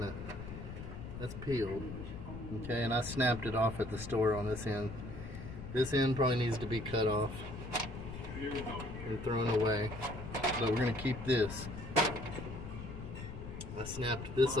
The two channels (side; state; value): left; noise; rumble, 9 dB below the sound